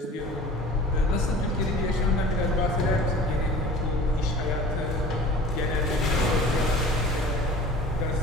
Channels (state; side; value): normal; both; correlation 0.43